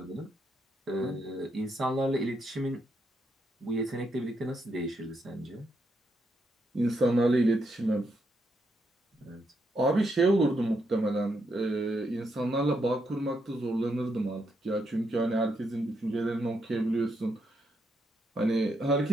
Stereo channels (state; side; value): normal; both; correlation 0.79